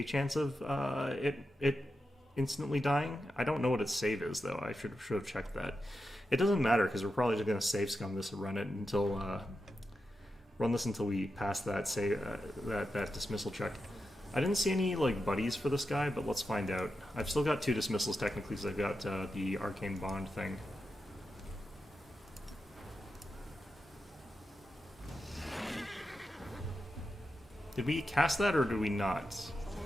chance of it instantly dying. I don't know what its save is, though. I should have checked that. It doesn't matter because we're probably just going to save scum this and run it until we pass that that dismissal check. I didn't see any like buddies for this guy, but let's find out. I've still got 2 dismissals technically, because I've got the arcane bond thing. Did we cast that or did we not?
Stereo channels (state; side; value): normal; both; correlation 0.89